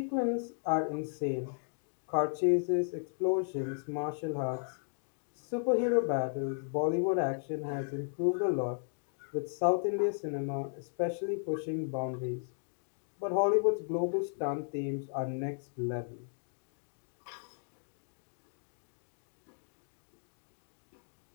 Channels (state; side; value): silent; right; digital silence